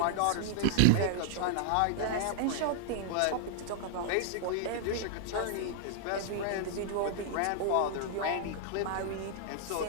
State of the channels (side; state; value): both; different; correlation -0.01